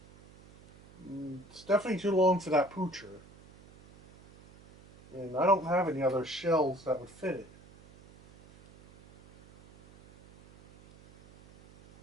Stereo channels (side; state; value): right; noise; hum, 24 dB below the sound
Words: It's definitely too long for that poocher. And I don't have any other shells that would fit it.